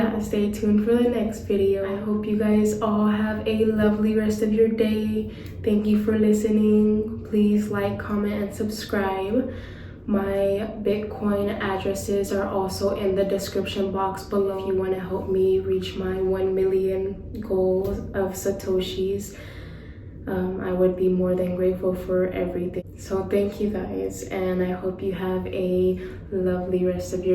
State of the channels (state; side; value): identical; both; correlation 1.00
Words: stay tuned for the next video. I hope you guys all have a lovely rest of your day. Thank you for listening. Please like, comment, and subscribe. My Bitcoin addresses are also in the description box below if you want to help me reach my 1 million goal of Satoshis. I would be more than grateful for everything. So thank you guys, and I hope you have a lovely rest of